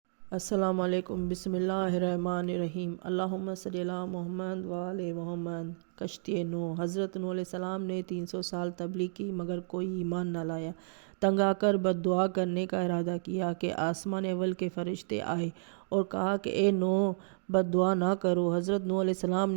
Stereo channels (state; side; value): silent; left; digital silence